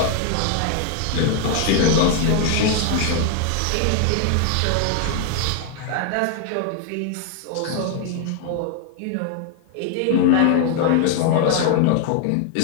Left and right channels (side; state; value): both; different; correlation 0.00